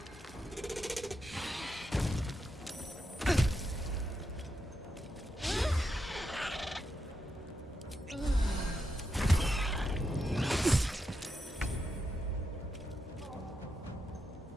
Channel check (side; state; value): both; normal; correlation 0.85